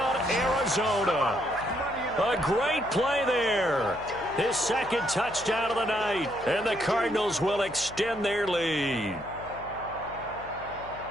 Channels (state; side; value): noise; left; hum, 18 dB below the sound